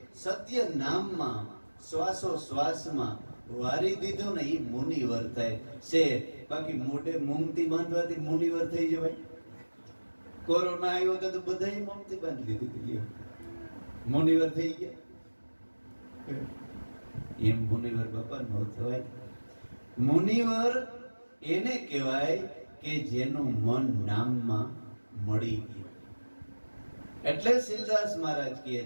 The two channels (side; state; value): both; inverted; correlation -1.00